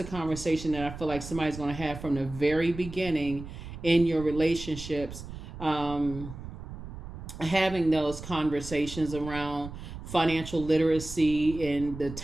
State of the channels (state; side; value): noise; right; rumble, 11 dB below the sound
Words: conversation that I feel like somebody's going to have from the very beginning in your relationships, having those conversations around financial literacy and the